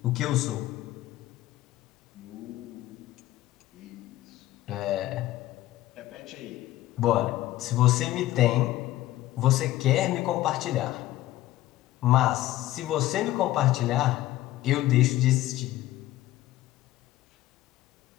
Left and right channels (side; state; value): right; quieter; 15.5 dB